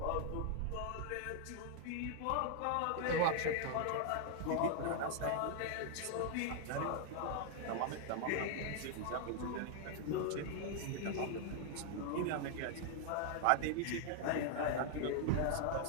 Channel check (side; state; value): both; different; correlation 0.00